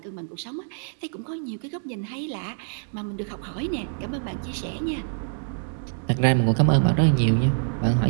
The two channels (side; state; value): left; silent; 61 dB below the other